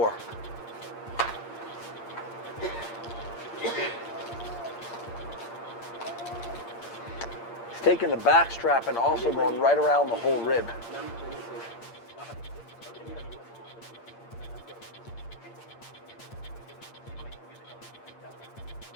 He's taking the back strap and also going right around the whole rib.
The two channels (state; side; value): late; right; 8.7 ms